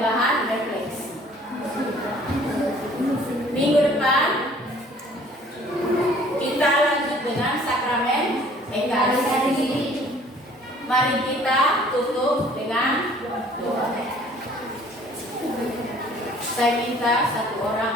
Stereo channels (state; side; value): normal; both; correlation 0.54